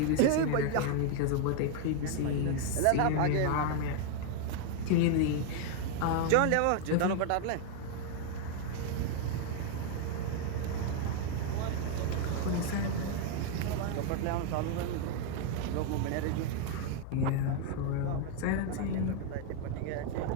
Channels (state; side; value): different; both; correlation 0.00